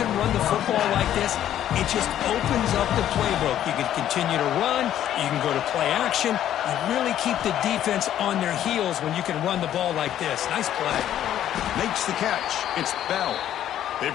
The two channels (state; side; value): quieter; right; 11.3 dB